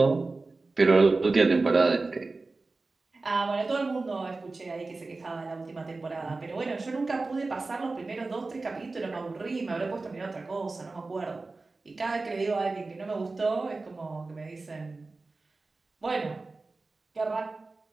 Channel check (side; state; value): left; quieter; 3.6 dB